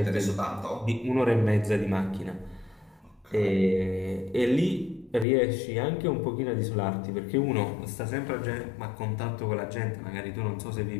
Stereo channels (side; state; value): right; drops out; at 5.2 s